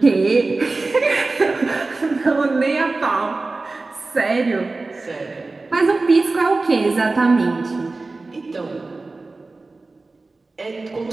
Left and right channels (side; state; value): left; quieter; 3.5 dB